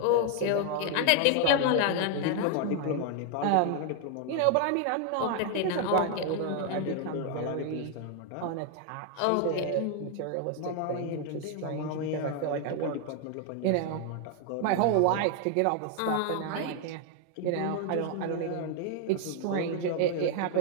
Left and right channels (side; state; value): both; different; correlation 0.00